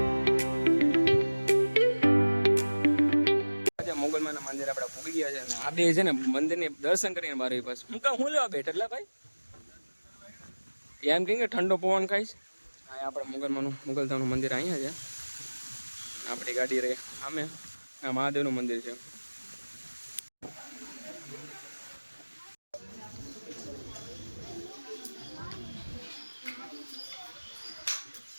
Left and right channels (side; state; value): both; inverted; correlation -1.00